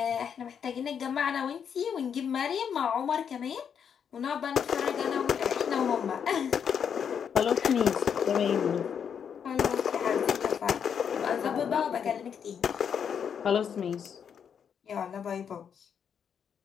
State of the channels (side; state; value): right; quieter; 7.6 dB